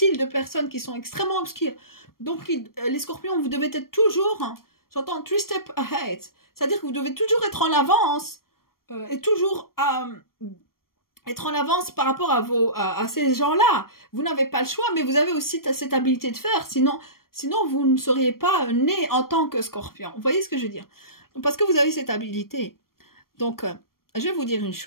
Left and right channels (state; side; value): late; right; 0.93 ms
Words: de personnes qui sont extrêmement obscures. Donc, les scorpions, vous devez être toujours, hein, j'entends 3 steps ahead. C'est-à-dire que vous devez toujours être en avance et toujours être en avance par rapport à ces gens-là. Vous n'avez pas le choix, mais vous avez aussi cette habilité de faire. Sinon vous ne seriez pas né en tant que scorpion. Vous voyez ce que je veux dire? Parce que vous avez cette habilité. Donc, je vais vous dire une